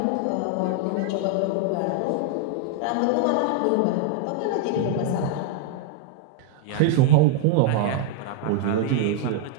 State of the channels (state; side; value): different; both; correlation 0.00